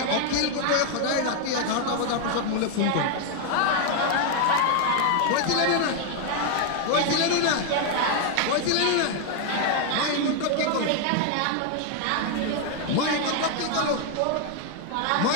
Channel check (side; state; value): both; different; correlation 0.01